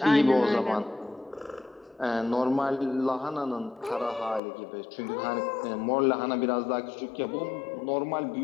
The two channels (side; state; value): right; drops out; at 4.4 s